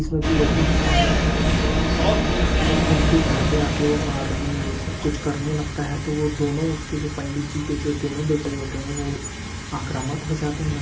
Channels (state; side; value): identical; both; correlation 1.00